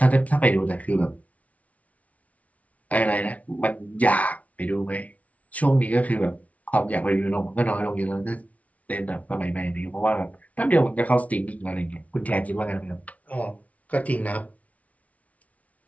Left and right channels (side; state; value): right; late; 0.068 ms